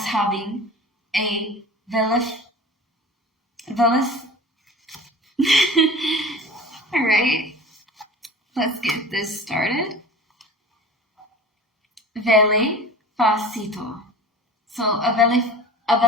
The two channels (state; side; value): normal; both; correlation 0.38